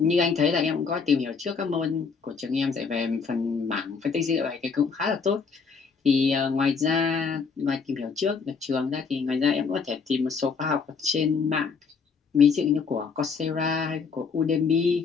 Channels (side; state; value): right; quieter; 5.4 dB